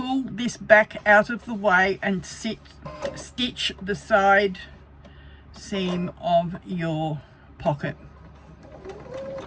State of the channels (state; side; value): identical; both; correlation 1.00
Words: this back out of the way and stitch the side seam of your pocket.